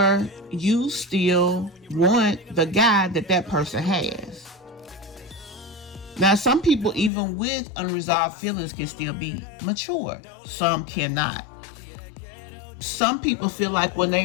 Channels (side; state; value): right; drops out; at 7.1 s